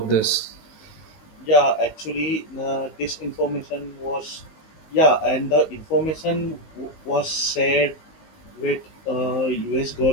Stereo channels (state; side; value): late; right; 19 ms